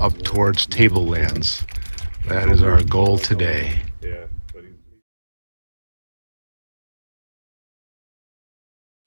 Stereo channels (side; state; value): both; inverted; correlation -1.00